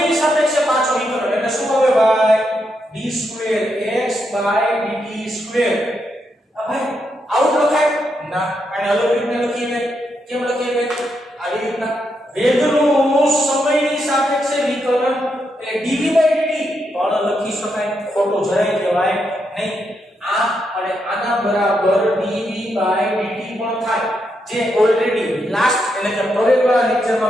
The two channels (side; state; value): both; normal; correlation 0.81